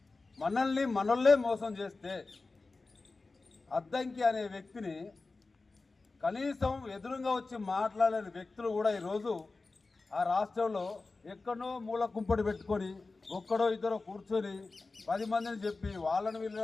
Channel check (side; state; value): right; quieter; 3.7 dB